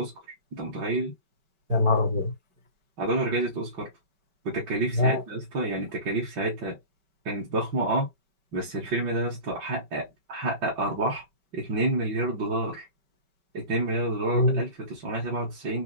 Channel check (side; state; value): left; late; 5.2 ms